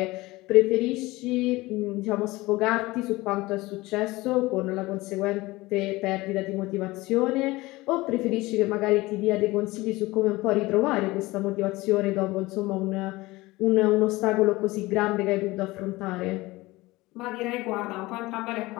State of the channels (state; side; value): quieter; right; 20.3 dB